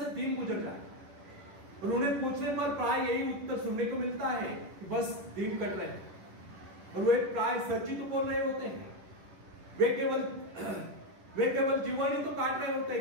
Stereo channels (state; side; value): late; left; 10 ms